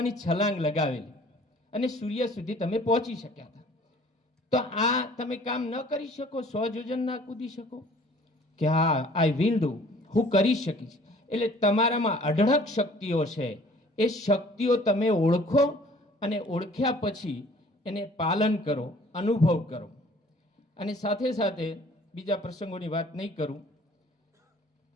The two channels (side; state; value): both; normal; correlation 0.53